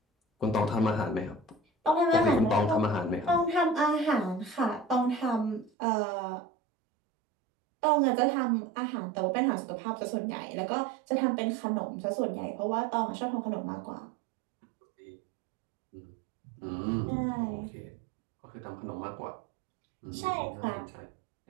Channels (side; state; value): left; drops out; at 5.7 s